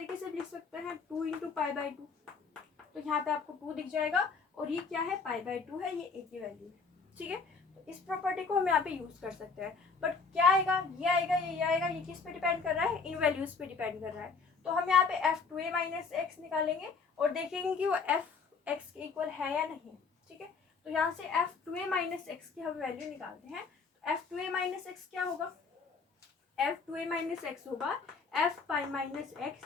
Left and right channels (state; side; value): quieter; right; 4.8 dB